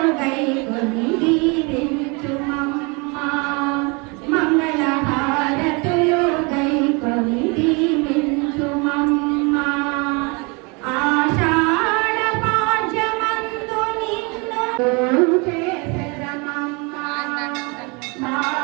గైకొని దీవించుమమ్మ. మంగళ హారతులు గైకొని దీవించుమమ్మ. ఆషాఢ పాడ్యమందు నిన్ను చేసెదమమ్మ.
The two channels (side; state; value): left; quieter; 30.1 dB